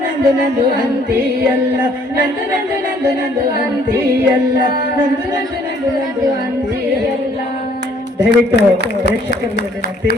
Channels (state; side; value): normal; both; correlation 0.62